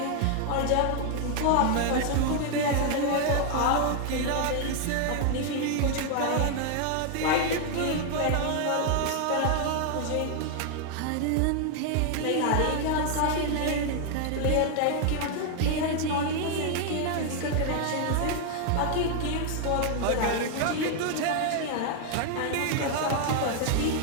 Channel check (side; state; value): both; different; correlation 0.00